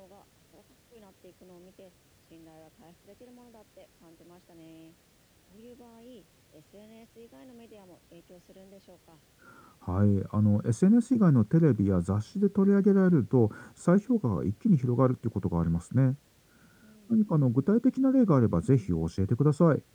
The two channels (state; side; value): identical; both; correlation 1.00